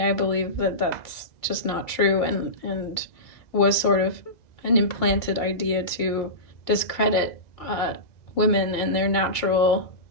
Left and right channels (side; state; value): right; late; 2.2 ms